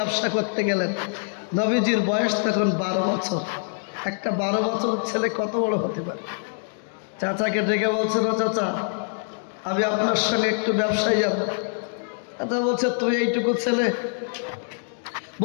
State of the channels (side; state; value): right; silent; 62 dB below the other